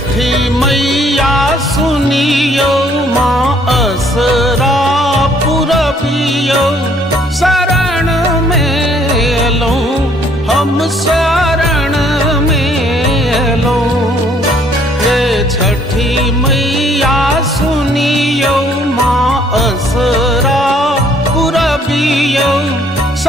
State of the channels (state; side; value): normal; both; correlation 0.63